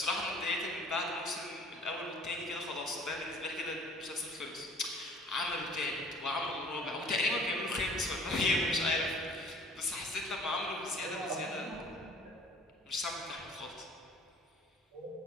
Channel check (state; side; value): normal; both; correlation 0.51